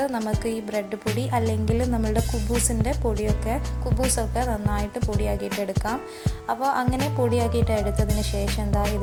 നമുക്ക് ഈ ബ്രെഡ് പൊടി അല്ലെങ്കിൽ നമ്മളുടെ കുബൂസൊക്കെ നന്നായിട്ട് പൊടിയാക്കിയിട്ട് എടുക്കാം. അപ്പോൾ അങ്ങനെ പൊടിയാക്കിയിട്ട് എടുത്തതിന് ശേഷം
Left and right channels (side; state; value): both; identical; correlation 1.00